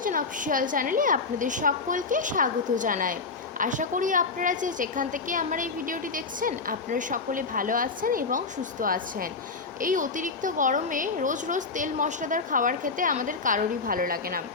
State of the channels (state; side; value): quieter; right; 4.4 dB